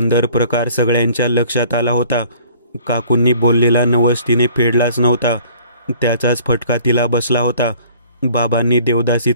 प्रकार सगळ्यांच्या लक्षात आला होता. काकूंनी बोललेला नवस तिने फेडलाच नव्हता. त्याचाच फटका तिला बसला होता. बाबांनी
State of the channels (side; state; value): both; inverted; correlation -0.53